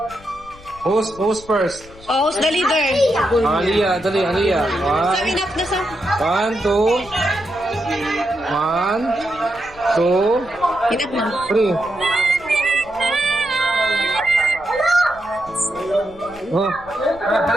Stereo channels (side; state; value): left; noise; rumble, 21 dB below the sound